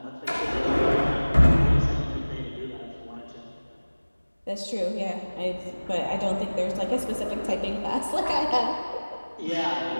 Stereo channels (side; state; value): both; inverted; correlation -1.00